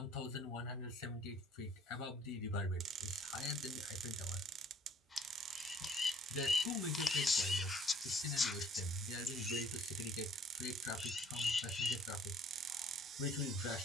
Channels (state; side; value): normal; both; correlation 0.59